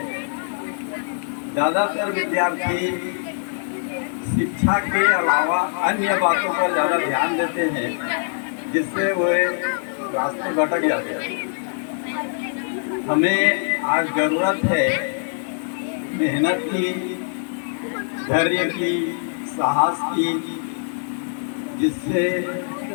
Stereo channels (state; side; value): silent; right; digital silence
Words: ज़्यादातर विद्यार्थी शिक्षा के अलावा अन्य बातों पर ज़्यादा ध्यान देते हैं जिससे वो रास्ते भटक जाते हैं। हमें आज ज़रूरत है मेहनत की, धैर्य की, साहस की, जिससे